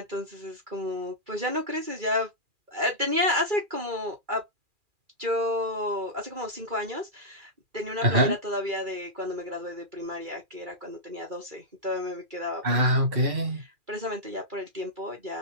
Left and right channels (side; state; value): left; late; 2.4 ms